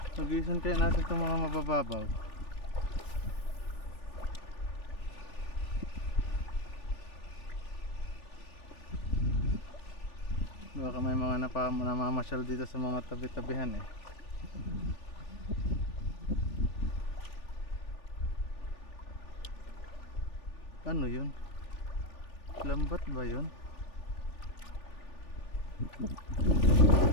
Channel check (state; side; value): late; right; 3.4 ms